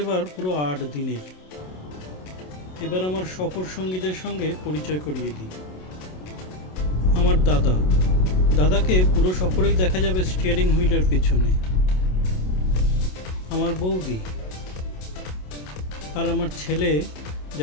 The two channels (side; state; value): right; late; 27 ms